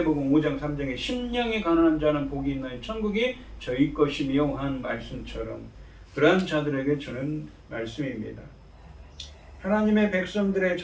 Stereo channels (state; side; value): identical; both; correlation 1.00